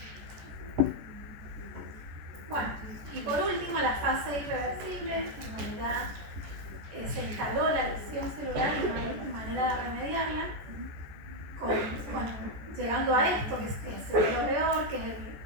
Bueno, y por último la fase irreversible, en donde ya se instaló la lesión celular y no hay manera de remediarla, llegando a esto, que es lo peor, que es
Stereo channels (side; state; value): left; late; 14 ms